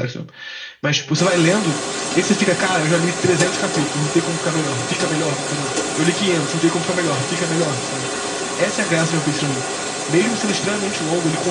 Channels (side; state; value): both; identical; correlation 1.00